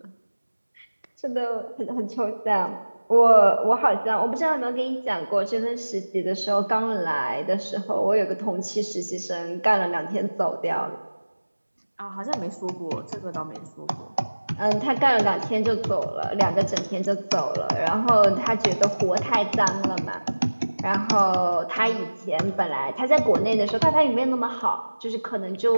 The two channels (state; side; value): inverted; both; correlation -1.00